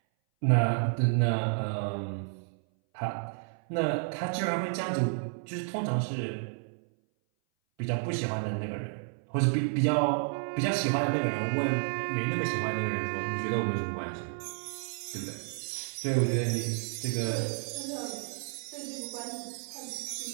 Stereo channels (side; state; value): left; silent; 57 dB below the other